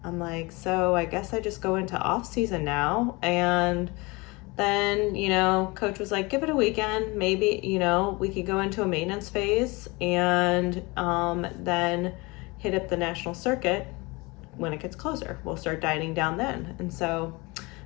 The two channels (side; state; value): right; quieter; 25.2 dB